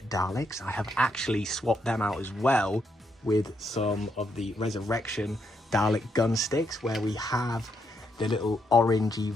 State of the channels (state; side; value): normal; both; correlation 0.78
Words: Daleks, I have actually swapped them out as well with some of the Resurrection Dalek gun sticks, where we have the little orangey